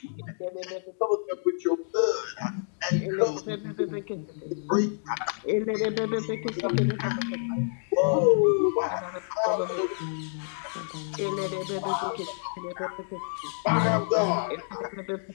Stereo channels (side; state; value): right; silent; digital silence